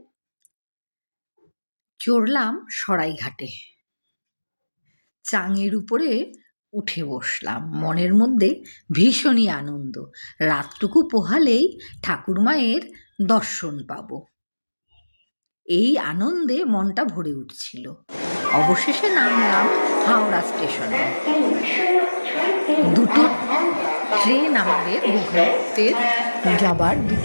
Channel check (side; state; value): both; inverted; correlation -1.00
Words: চড়লাম সরাইঘাটে। চাঙের উপরে উঠে বসলাম, মনের মধ্যে ভীষণই আনন্দ। রাতটুকু পোহালেই ঠাকুরমায়ের দর্শন পাব, এই আনন্দে মনটা ভরে উঠছিল। অবশেষে নামলাম হাওড়া স্টেশনে। দুটো ট্রেন, আমাদের গোঘাটের যাবার